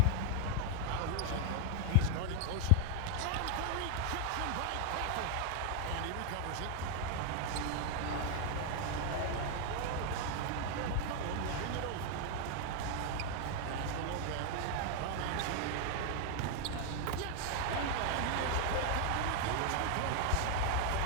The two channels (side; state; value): both; different; correlation 0.00